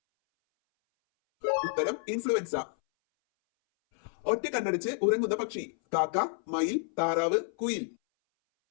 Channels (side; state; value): right; silent; 58 dB below the other